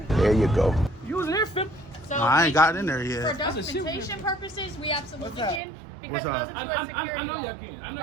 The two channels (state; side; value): drops out; left; at 5.6 s